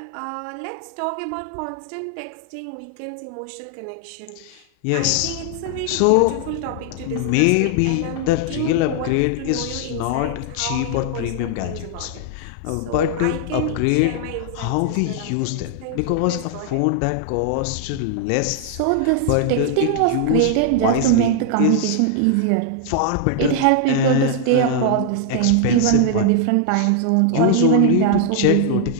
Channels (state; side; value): different; both; correlation 0.00